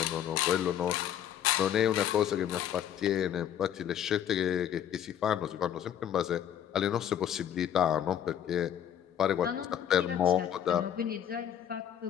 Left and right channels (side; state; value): right; quieter; 9.9 dB